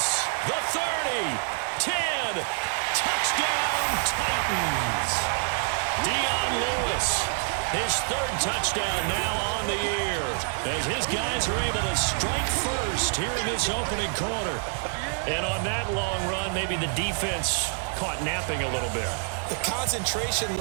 the 30, 10, touchdown Titans. Dion Lewis, his 3rd touchdown now on the year. As his guys are able to strike first here in this opening quarter. And on that long run, maybe the defense caught napping a little bit. The concentration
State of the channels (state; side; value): silent; left; 57 dB below the other